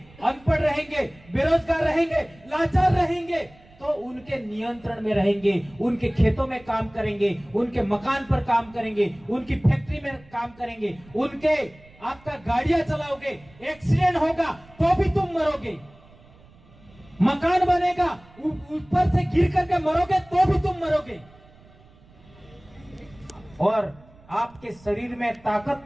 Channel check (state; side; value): noise; right; rumble, 26 dB below the sound